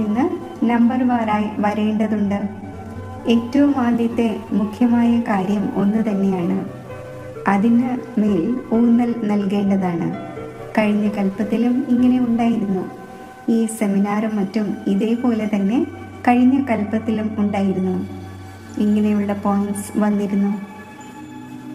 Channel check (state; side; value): identical; both; correlation 1.00